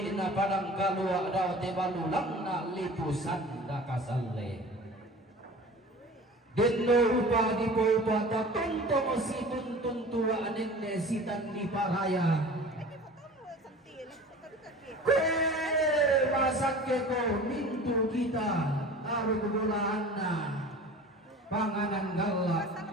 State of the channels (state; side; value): normal; both; correlation 0.41